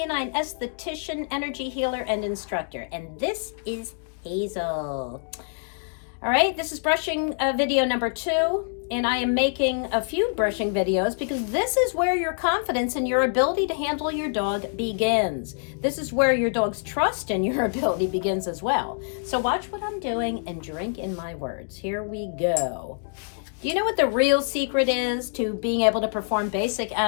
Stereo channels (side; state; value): right; silent; digital silence